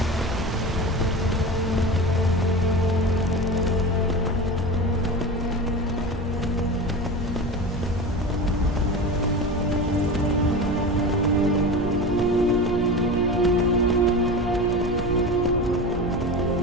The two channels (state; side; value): normal; both; correlation 0.28